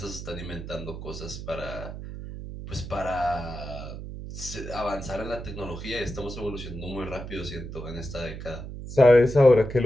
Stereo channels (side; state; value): right; noise; hum, 9 dB below the sound